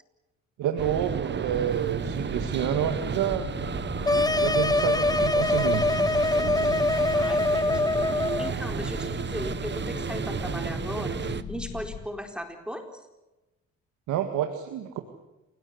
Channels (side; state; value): both; normal; correlation 0.44